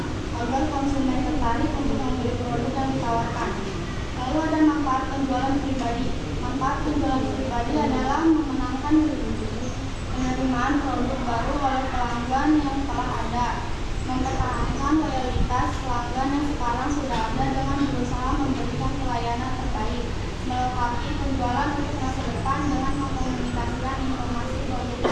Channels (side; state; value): both; identical; correlation 1.00